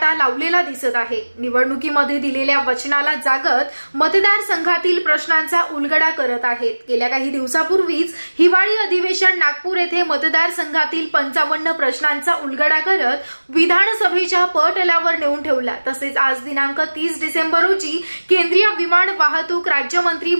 लावलेला दिसत आहे। निवडणुकीमध्ये दिलेल्या वचनाला जागत मतदारसंघातील प्रश्नांचा उलगडा करत आहेत। गेल्या काही दिवसापूर्वीच हिवाळी अधिवेशन नागपूर येथे मतदारसंघातील 55 प्रश्नांचा उलगडा करत विधानसभेच्या पटलावर नेऊन ठेवला। तसेच आज दिनांक 30 डिसेंबर रोजी केंद्रीय विमान वाहतूक राज्यमंत्री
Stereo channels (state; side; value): inverted; both; correlation -1.00